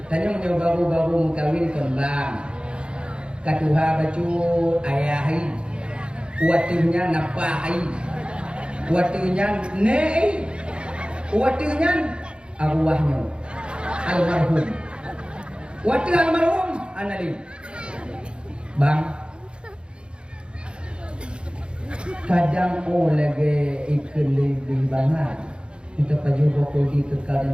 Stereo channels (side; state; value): left; late; 0.054 ms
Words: tanya baru-baru kawin kembang. Katuha baju ayahi, watinya napahai, watinya nei, watinya arwahnya almarhum, wati almarhum anali, bang. Kadang lagi ikut lebih banget. Kita baju bokol di kekal